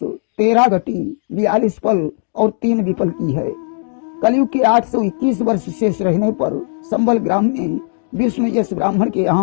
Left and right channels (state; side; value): silent; right; digital silence